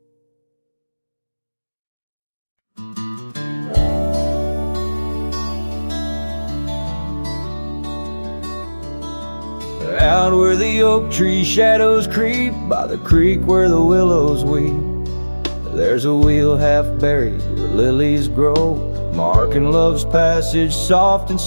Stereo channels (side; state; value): both; inverted; correlation -1.00